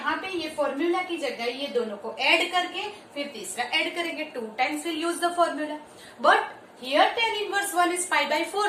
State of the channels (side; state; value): both; identical; correlation 1.00